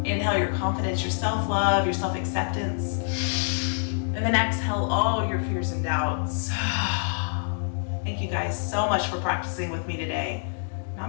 Inhale your confidence, your self-love, your self-acceptance. And then exhale all your fears and doubts. Thank you guys so much for practicing with me today.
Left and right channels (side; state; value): right; silent; 61 dB below the other